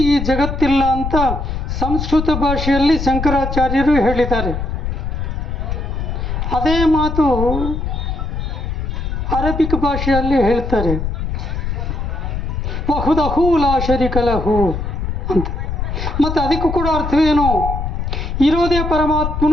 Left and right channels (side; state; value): left; noise; rumble, 3 dB below the sound